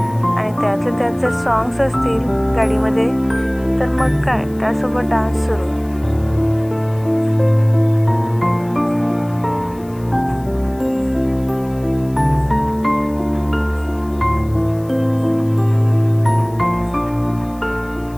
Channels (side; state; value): left; noise; hiss, 26 dB below the sound